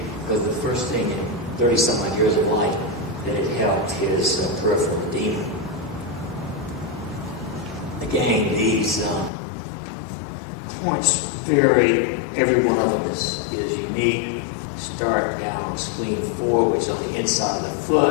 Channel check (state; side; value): drops out; right; at 9.3 s